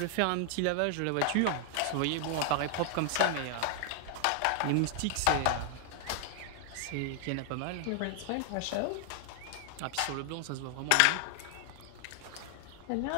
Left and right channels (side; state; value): both; different; correlation 0.00